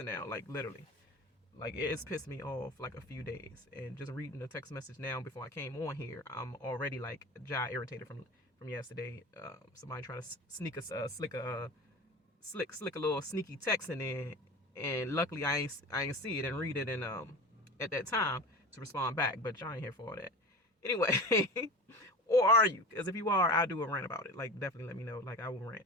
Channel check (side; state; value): both; normal; correlation 0.33